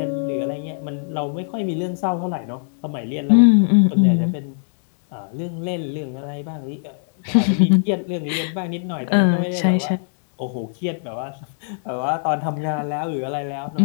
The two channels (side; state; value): right; silent; digital silence